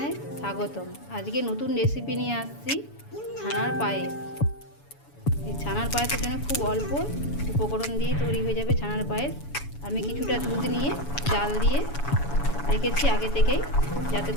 স্বাগতম। আজকে নতুন রেসিপি নিয়ে আসছি, ছানার পায়েস। এই ছানার পায়েসের জন্য খুব অল্প উপকরণ দিয়ে তৈরি হয়ে যাবে ছানার পায়েস। আমি কিছুটা দুধ নিয়ে জাল দিয়ে রেখেছি আগে থেকেই, যাতে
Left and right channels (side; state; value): right; late; 7.1 ms